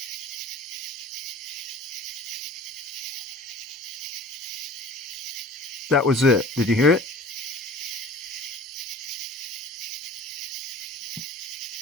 That was it. Did you hear it?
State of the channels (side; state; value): both; normal; correlation 0.42